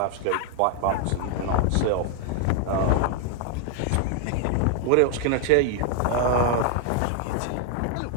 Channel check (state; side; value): different; both; correlation 0.00